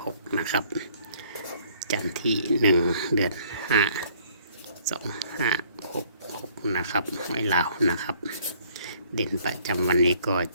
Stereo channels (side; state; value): both; inverted; correlation -0.60